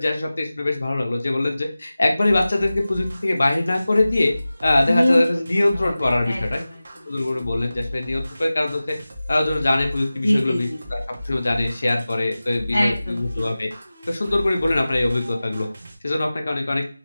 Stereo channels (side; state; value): both; inverted; correlation -0.97